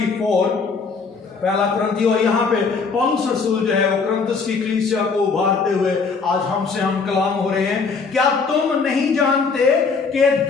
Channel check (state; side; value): quieter; right; 4.9 dB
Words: पहला कुरिन्थी। और यहाँ पे पौलुस रसूल जो है वो कुरिन्थस की कलीसिया को उभारते हुए आज हमसे हम कलाम हो रहे हैं। क्या तुम नहीं जानते कि